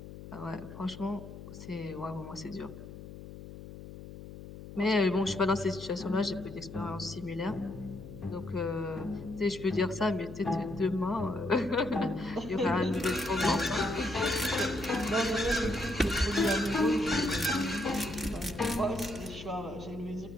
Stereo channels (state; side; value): noise; left; hum, 13 dB below the sound